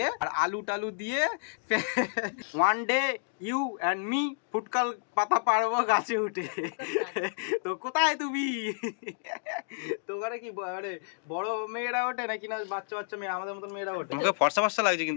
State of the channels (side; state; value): right; silent; digital silence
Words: আর আলু টালু দিয়ে one day you and me ফুটকাল পাতা পারবো গাছে উঠে। তো কোথায় তুমি? তো ওখানে কি মানে বড় মেয়েরা ওঠে নাকি না বাচ্চা বাচ্চা মেয়ে আমাদের মতন মেয়েরা ওঠে? মুখে ফর্সা ফর্সা লাগছে